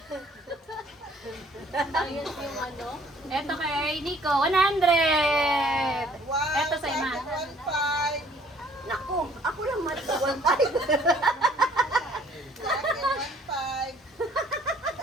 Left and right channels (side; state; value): both; normal; correlation 0.58